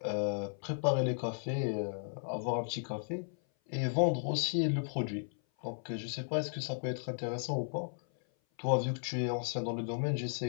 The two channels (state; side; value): silent; right; 54 dB below the other